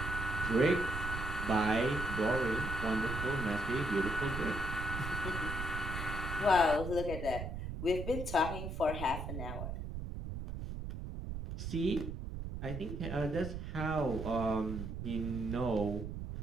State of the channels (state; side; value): noise; right; rumble, 6 dB below the sound